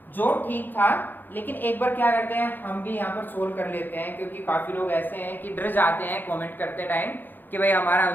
जो ठीक था। लेकिन एक बार क्या करते हैं, हम भी यहाँ पर सोल्व कर लेते हैं, क्योंकि काफी लोग ऐसे हैं कि डर जाते हैं कमेंट करते टाइम कि भाई हमारा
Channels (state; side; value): late; right; 0.089 ms